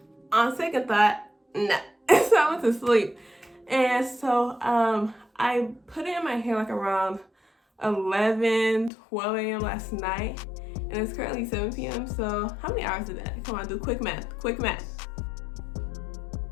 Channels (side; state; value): right; drops out; at 8.9 s